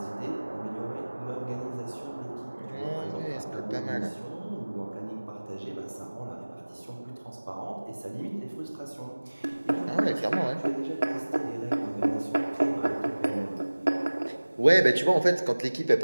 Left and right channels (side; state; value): both; inverted; correlation -1.00